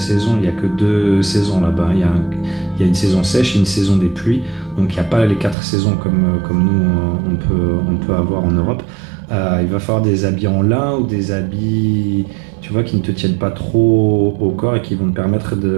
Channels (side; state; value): left; drops out; at 5.6 s